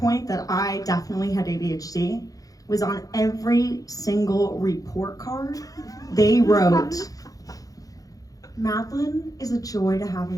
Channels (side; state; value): right; late; 0.17 ms